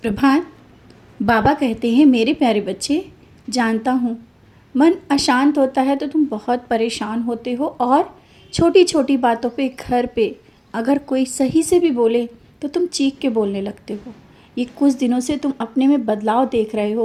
बाबा कहते हैं, मेरे प्यारे बच्चे, जानता हूँ मन अशांत होता है तो तुम बहुत परेशान होते हो और छोटी छोटी बातों पे घर पे अगर कोई सही से भी बोले तो तुम चीख के बोलने लगते हो। ये कुछ दिनों से तुम अपने में बदलाव देख रहे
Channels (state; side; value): identical; both; correlation 1.00